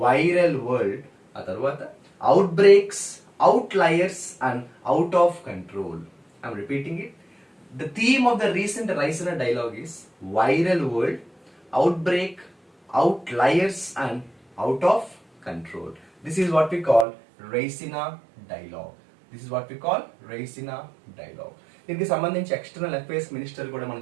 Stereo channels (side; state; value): left; drops out; at 17.1 s